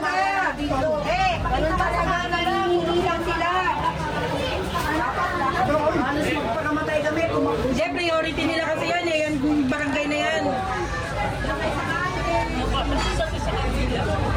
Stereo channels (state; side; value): identical; both; correlation 1.00